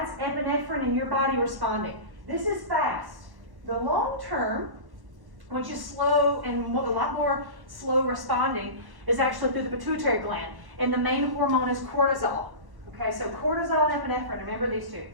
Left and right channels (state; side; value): late; left; 1.1 ms